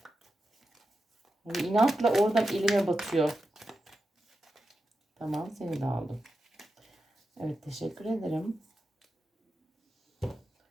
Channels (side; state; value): both; normal; correlation 0.90